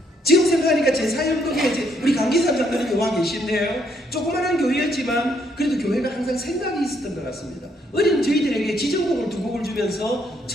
지금 생각하니까 제 사역동에 우리 강기삼 장로님이 와 계신데요, 조그마한 교회였지만 그래도 교회가 항상 생각이 있었던 것 같습니다. 어린 저희들에게 지정곡을 2곡을 주면서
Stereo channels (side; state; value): both; normal; correlation 0.71